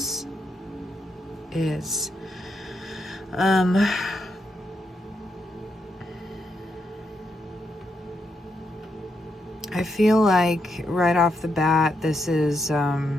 is. I feel like right off the bat, this is a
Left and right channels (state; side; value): normal; both; correlation 0.81